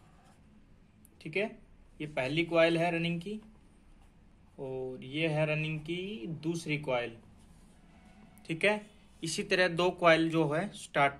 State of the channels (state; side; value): identical; both; correlation 1.00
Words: ठीक है, ये पहली कॉइल है रनिंग की और ये है रनिंग की दूसरी कॉइल। ठीक है, इसी तरह 2 कॉइल जो है